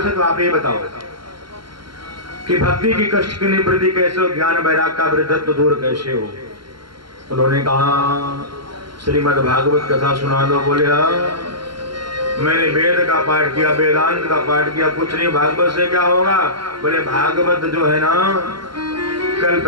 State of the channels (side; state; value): left; late; 0.73 ms